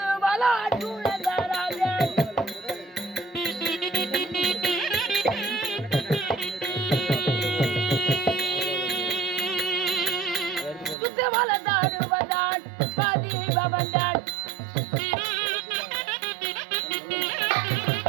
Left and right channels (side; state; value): left; drops out; at 11.0 s